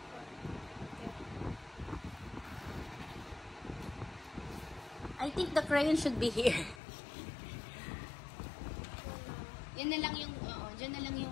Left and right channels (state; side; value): drops out; right; at 6.8 s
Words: I think the crayon should be here. Yan na lang yung, dyan na lang